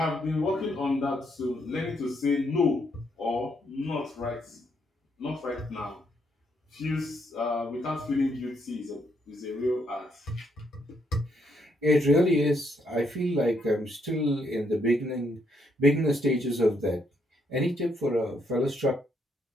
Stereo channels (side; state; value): both; normal; correlation 0.74